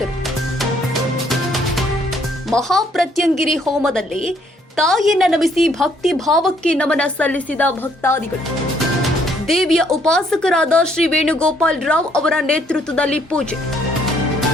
ಮಹಾಪ್ರತ್ಯಂಗಿರಿ ಹೋಮದಲ್ಲಿ ತಾಯಿಯನ್ನ ನಮಿಸಿ ಭಕ್ತಿ ಭಾವಕ್ಕೆ ನಮನ ಸಲ್ಲಿಸಿದ ಭಕ್ತಾದಿಗಳು. ದೇವಿಯ ಉಪಾಸಕರಾದ ಶ್ರೀ ವೇಣುಗೋಪಾಲ್ ರಾವ್ ಅವರ ನೇತೃತ್ವದಲ್ಲಿ ಪೂಜೆ.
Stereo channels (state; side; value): normal; both; correlation 0.67